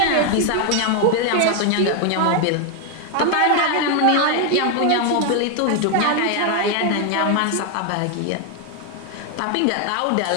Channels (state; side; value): different; both; correlation 0.01